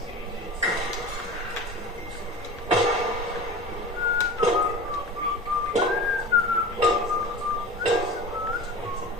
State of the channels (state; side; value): normal; both; correlation 0.35